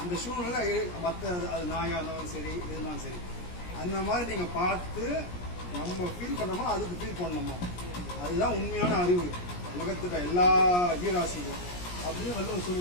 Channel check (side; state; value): right; late; 17 ms